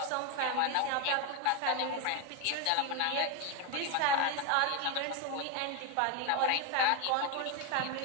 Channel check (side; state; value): both; different; correlation 0.02